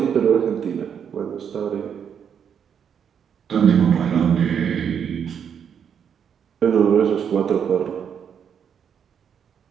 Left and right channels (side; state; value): left; quieter; 7.8 dB